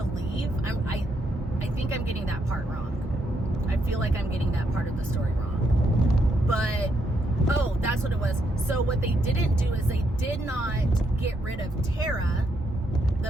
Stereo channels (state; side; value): normal; both; correlation 0.77